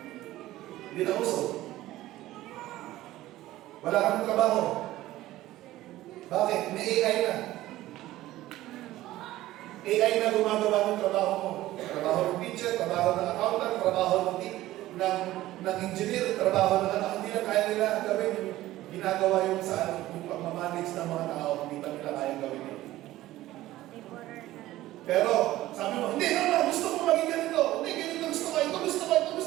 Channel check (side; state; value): left; quieter; 15.8 dB